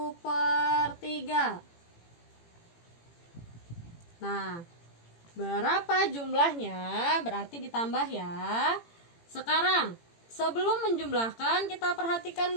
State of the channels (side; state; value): right; late; 18 ms